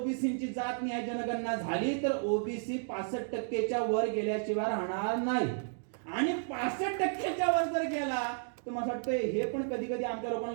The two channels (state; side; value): silent; left; digital silence